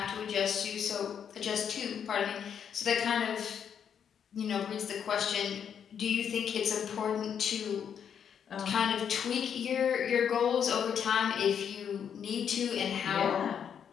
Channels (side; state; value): right; quieter; 8.0 dB